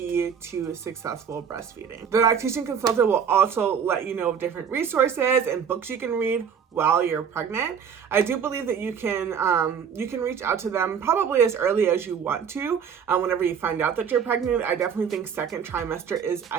to successful breastfeeding. The lactation consultant will also let you know of different resources and books you can read while you're pregnant. I do believe that you can reach out to them probably as early as you want to. Whenever you find out that you're pregnant, I definitely think second trimester is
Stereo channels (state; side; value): quieter; left; 7.2 dB